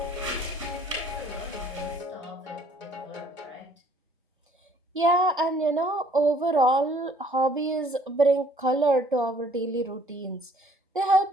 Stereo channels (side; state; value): both; normal; correlation 0.59